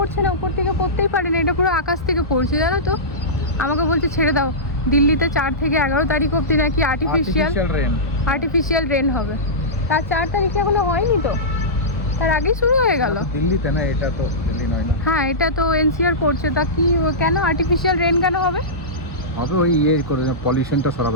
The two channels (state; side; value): normal; both; correlation -0.16